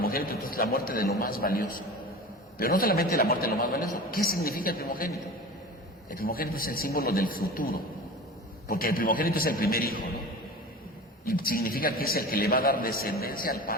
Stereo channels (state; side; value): normal; both; correlation 0.34